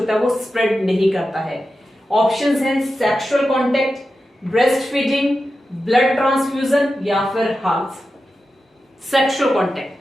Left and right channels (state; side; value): normal; both; correlation 0.91